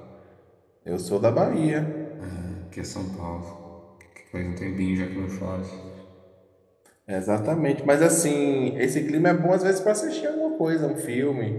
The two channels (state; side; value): identical; both; correlation 1.00